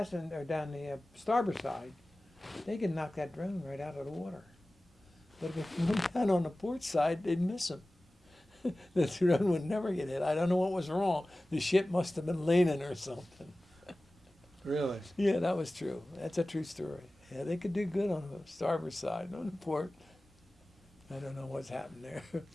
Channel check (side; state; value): both; normal; correlation 0.97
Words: down the starboard side, they can knock that drone right out of the water. But if it went down on the port side, they'd miss him. The drone would never get hit. I don't know what was wrong. The ship must have been leaning or something. Really? Yeah, that was true. That's a true story. Yeah, they could do good on the starboard side, on the port. I don't know what's happened there.